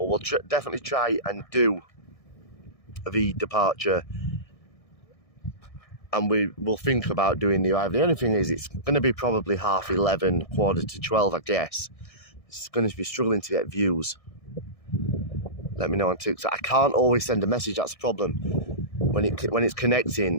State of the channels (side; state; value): right; late; 1.6 ms